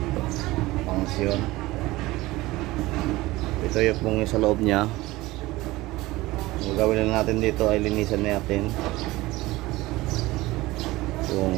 function. Ito yung pong sa loob niya. Ang gagawin na natin dito ay linisan natin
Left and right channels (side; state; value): left; quieter; 19.3 dB